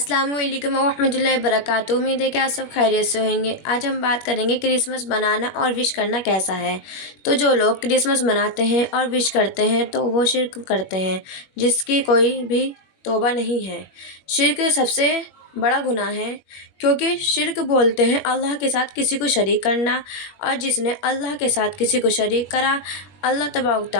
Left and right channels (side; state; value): right; late; 21 ms